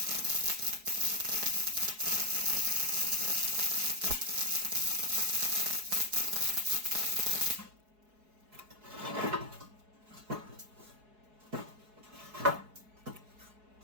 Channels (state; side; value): late; left; 4.7 ms